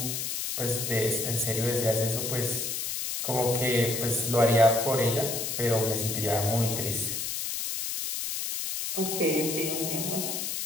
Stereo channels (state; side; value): noise; left; hiss, 3 dB below the sound